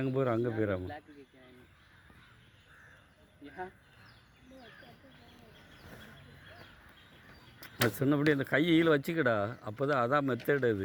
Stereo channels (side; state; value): both; identical; correlation 1.00